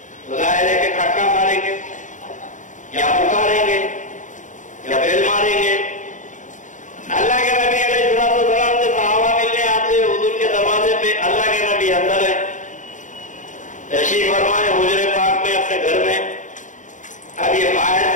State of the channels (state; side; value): late; right; 0.36 ms